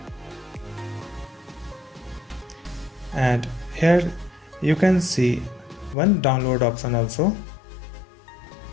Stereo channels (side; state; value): right; drops out; at 6.0 s